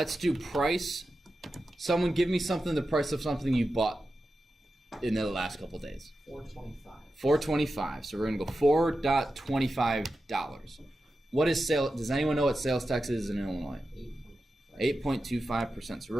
do price. Someone give me something, the price of something you bought in the last couple days. $4.25. $4.25. So we're going to go $4.25. What is sale? Does anyone know what sales tax is in Illinois? 8.25%. So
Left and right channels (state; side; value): normal; both; correlation 0.91